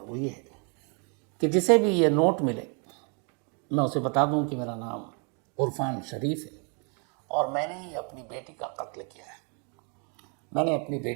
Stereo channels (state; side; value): quieter; left; 37.3 dB